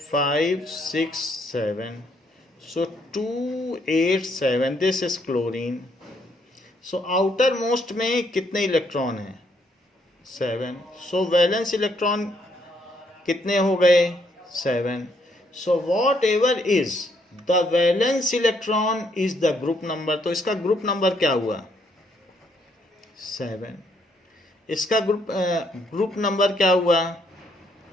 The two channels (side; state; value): both; normal; correlation 0.71